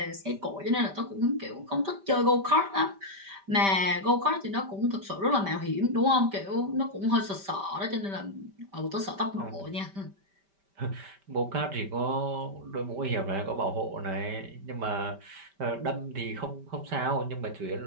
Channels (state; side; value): late; left; 5.1 ms